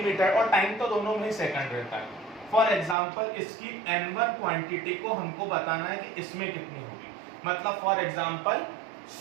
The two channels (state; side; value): drops out; left; at 3.0 s